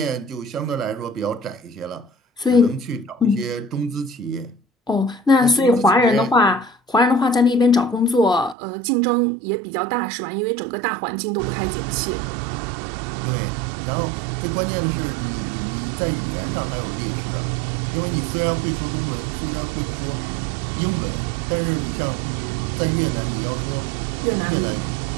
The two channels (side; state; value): left; drops out; at 8.6 s